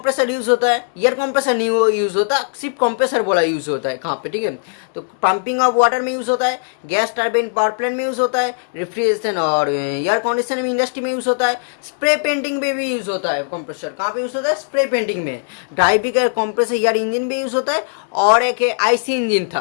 यूज होता है। एयर कंप्रेसर नहीं यूज होता, सिर्फ कंप्रेसर बोला यूज होता है। कहाँ पे? ठीक है, तो पंपिंग ऑफ वाटर में यूज होता है, गैस टर्बाइन पावर प्लांट में यूज होता है, रेफ्रिजरेशन और एयर कंडीशन में इंडस्ट्री में यूज होता है। स्प्रे पेंटिंग में भी यूज होता है कंप्रेसर। कहाँ पे यूज होता है? स्प्रे पेंटिंग में। ड्राइवी का कंप्रेसर एयर इंजन में यूज होता है, और एक आईसी इंजन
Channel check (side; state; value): right; silent; 67 dB below the other